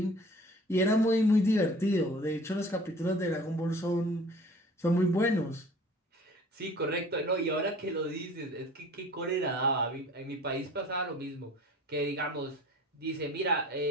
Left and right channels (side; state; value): both; normal; correlation 0.47